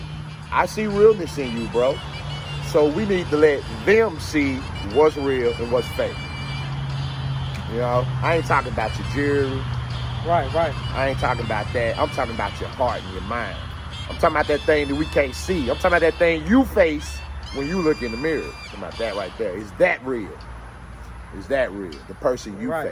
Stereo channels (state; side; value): identical; both; correlation 1.00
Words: I see realness in you, bro. So we need to let them see what's real and what's fake. You know, I ain't talking about your jewelry. Right. I ain't talking about that. I'm talking about your heart and your mind. I'm talking about that thing that we can't see. I'm talking about that thing you face when you look in the mirror. I'm talking about that right there. Is that real? Is that real? The person you